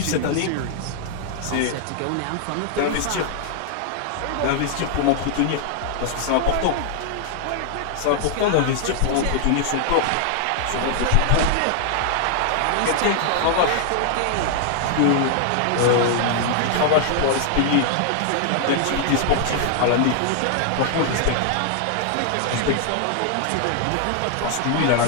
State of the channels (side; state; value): both; different; correlation 0.00